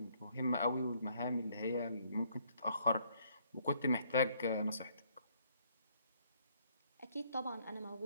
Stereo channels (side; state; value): both; inverted; correlation -0.67